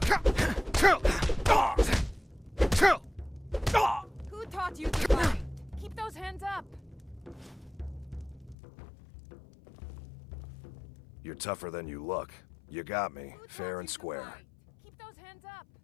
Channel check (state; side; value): drops out; right; at 8.6 s